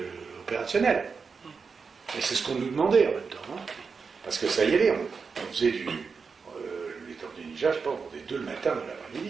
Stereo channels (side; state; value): left; quieter; 5.2 dB